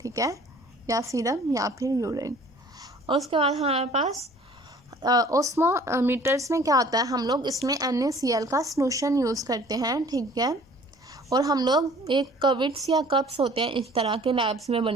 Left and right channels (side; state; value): both; normal; correlation 0.52